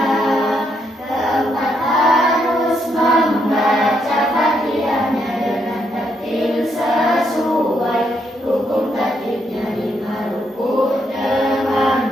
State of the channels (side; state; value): both; normal; correlation 0.76